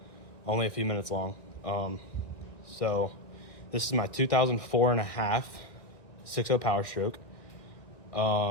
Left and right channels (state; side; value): late; right; 1.9 ms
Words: only a few minutes long. So this is my 2004 and a half 6.0 Power Stroke.